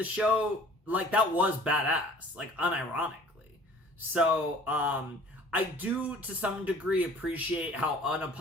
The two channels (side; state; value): both; normal; correlation 0.50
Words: show, like, that was badass, like, unironically. So, I do, to some degree, appreciate how